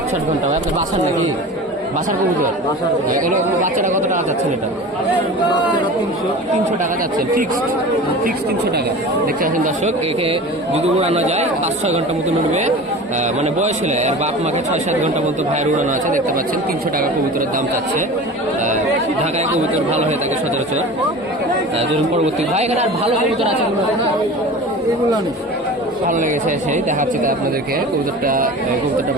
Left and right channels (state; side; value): normal; both; correlation 0.35